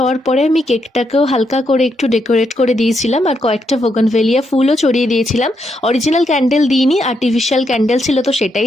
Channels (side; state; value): both; normal; correlation 0.79